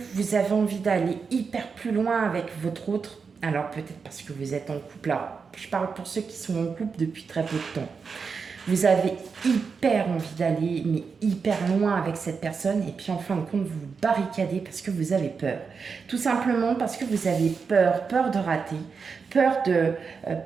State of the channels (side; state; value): left; quieter; 5.4 dB